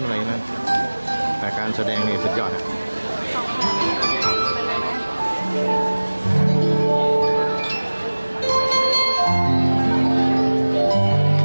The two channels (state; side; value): inverted; both; correlation -1.00